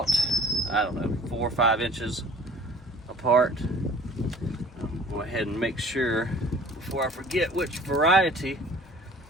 I don't know, 4 or 5 inches apart. Go ahead and make sure before I forget which variety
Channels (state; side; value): normal; both; correlation 0.49